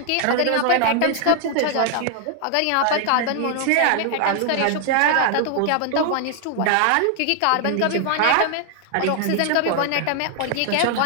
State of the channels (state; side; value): different; both; correlation 0.00